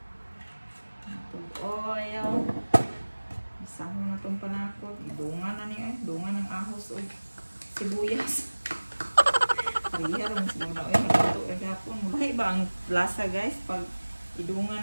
Itong oil. Isama na itong panakot. Idungan na niya eh. Dungan ng ahos o sibuyas. Pariha rin siguro na. Nagluto eh gapon. Mulahi ba ang lasa guys? Pag idungan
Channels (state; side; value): inverted; both; correlation -1.00